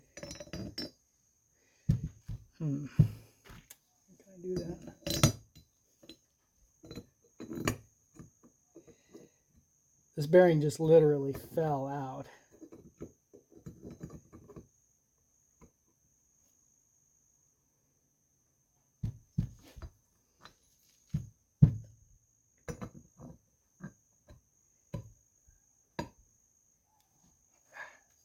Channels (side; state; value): both; identical; correlation 1.00